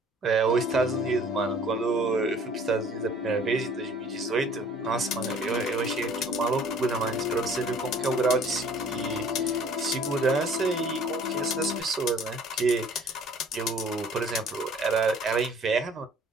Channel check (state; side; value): normal; both; correlation 0.53